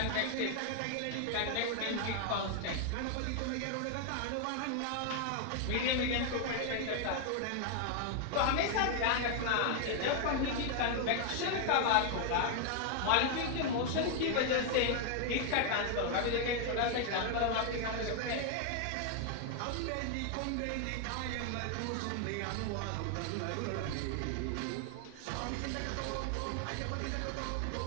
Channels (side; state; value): both; different; correlation 0.00